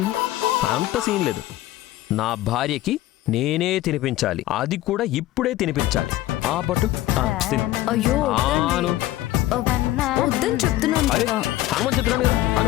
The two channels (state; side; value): quieter; right; 15.4 dB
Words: అంత సీన్ లేదు. నా భార్యకి నేనే తినిపించాలి, అది కూడా ఇప్పుడే తినిపించాలి. ఆపట్టు. అయ్యో వద్దని చెప్తున్నాను. అమ్మని చెప్తున్నాను కదా.